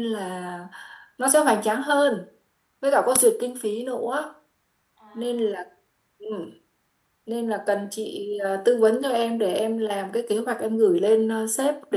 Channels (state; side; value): identical; both; correlation 1.00